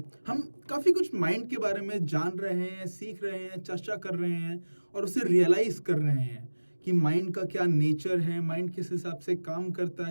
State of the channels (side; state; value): both; inverted; correlation -1.00